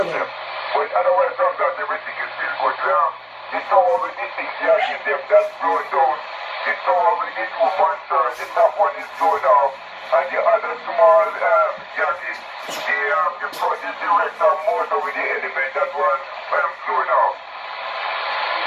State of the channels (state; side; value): identical; both; correlation 1.00